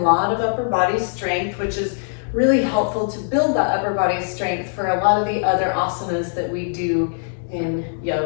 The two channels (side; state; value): right; silent; digital silence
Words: lot of upper body strength, which is really helpful to build that upper body strength for a lot of the other asanas that we do in